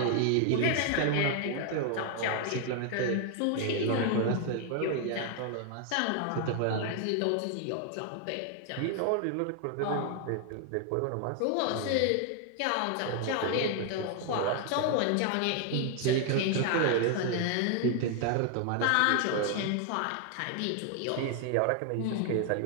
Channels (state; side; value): different; both; correlation 0.00